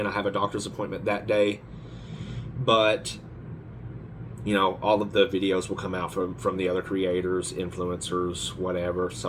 I have a doctor's appointment that day, but all of the videos will come out from the other creators, influencers, whatever.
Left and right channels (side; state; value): both; identical; correlation 1.00